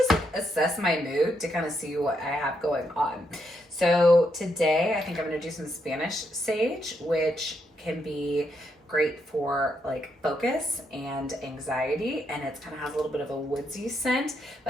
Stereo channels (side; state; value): both; normal; correlation 0.78